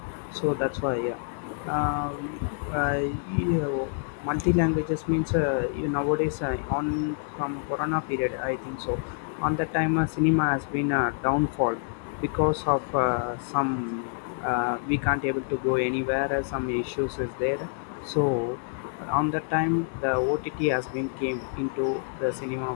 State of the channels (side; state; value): right; silent; 60 dB below the other